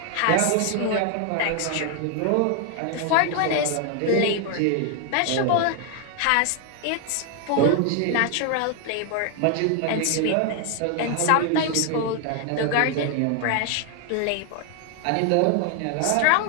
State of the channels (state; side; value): different; both; correlation 0.01